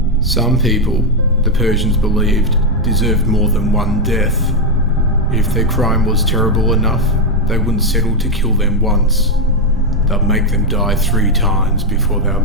Some people, the Persians believed, deserved more than one death. If their crime was terrible enough, they wouldn't settle to kill them once. They'd make them die 3 times before they're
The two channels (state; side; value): normal; both; correlation 0.03